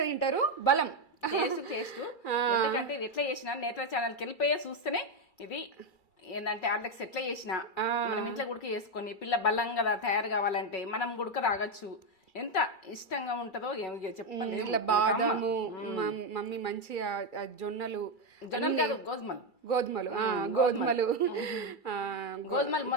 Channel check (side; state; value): right; late; 2.3 ms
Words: తింటారు. బలం టేస్ట్ ఎందుకంటే ఇది ఎట్లా చేసినా నేత్ర ఛానల్కి వెళ్ళిపోయే చూస్తేనే ఇది ఏంటంటే హార్లిక్స్ ఎట్లా చేసినా మనం ఇంట్లో గుడికి చేసుకొని పిల్ల బలంగా తయారు కావాలంటే మనం గుడక రాగచ్చు. ఎంత ఇష్టంగా ఉంటుందో చెప్పండి. ఇట్లా బాదాము మమ్మీ మంచిగా జొన్నలు గోధుమలు